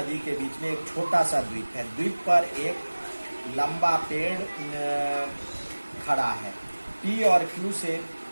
के बीच में एक छोटा सा द्वीप है, द्वीप पर एक लंबा पेड़ खड़ा है, P और Q से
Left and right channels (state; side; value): inverted; both; correlation -1.00